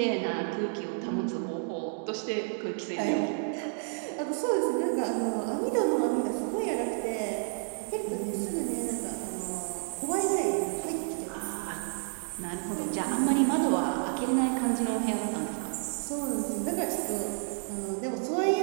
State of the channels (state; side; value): silent; left; 57 dB below the other